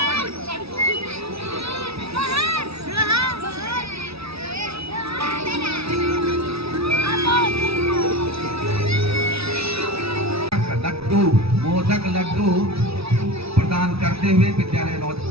लड्डू मोदक लड्डू प्रदान करते हुए विद्यालय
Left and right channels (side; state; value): left; late; 0.77 ms